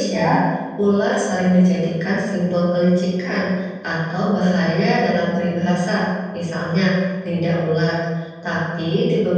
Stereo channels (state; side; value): identical; both; correlation 1.00